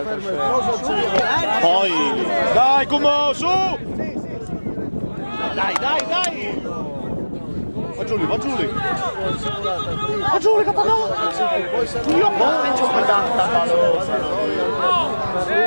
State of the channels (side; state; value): both; inverted; correlation -1.00